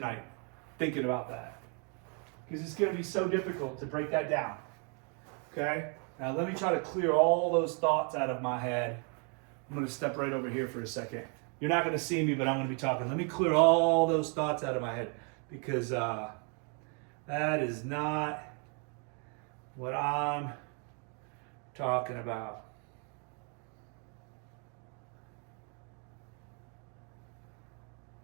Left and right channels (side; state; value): left; quieter; 38.0 dB